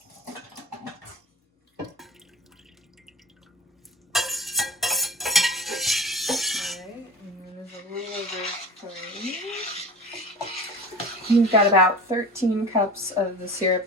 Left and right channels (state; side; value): normal; both; correlation 0.35